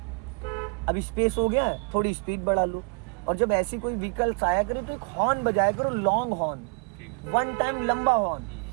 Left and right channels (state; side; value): quieter; left; 35.7 dB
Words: अब स्पेस हो गया है, थोड़ी स्पीड बढ़ा लो। और जब ऐसी कोई व्हीकल्स आया करे तो एक हॉर्न बजाया करो, लॉन्ग हॉर्न, ठीक है। वन टाइम लंबा हॉर्न।